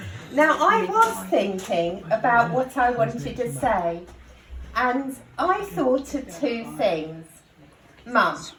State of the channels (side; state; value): both; identical; correlation 1.00